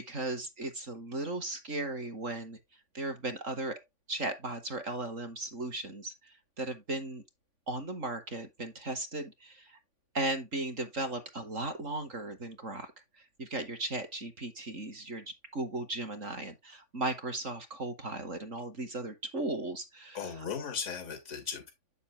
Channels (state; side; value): late; left; 3.5 ms